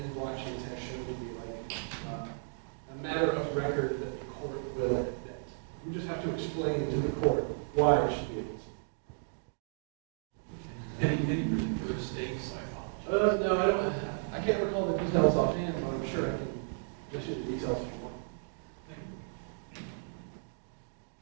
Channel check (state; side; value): silent; left; digital silence